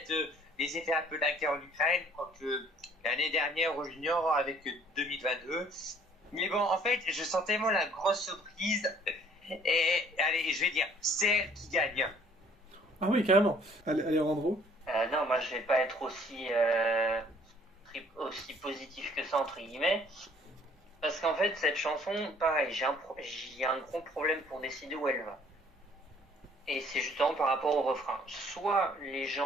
des effets un peu de la guerre en Ukraine, quoique l'année dernière au junior avec 2022. Mais bon, en fait, je sens tellement la grosse surprise. Et allez, je vais dire, c'est elle qui gagne. Ah oui, carrément. Allez, Randro. Non, moi je vais pas être aussi aussi positif que ça, entre guillemets. Parce qu'en fait, cette chanson, pareil, j'ai un gros problème pour décider où elle va. Et c'est justement par rapport au refrain. Soit les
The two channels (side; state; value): both; normal; correlation 0.57